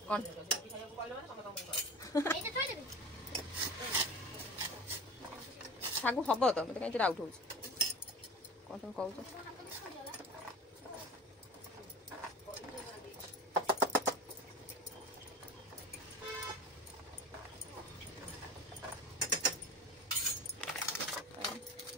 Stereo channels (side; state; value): both; normal; correlation 0.34